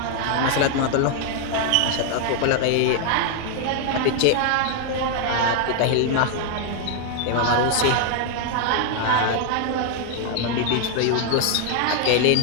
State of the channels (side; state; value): both; different; correlation 0.00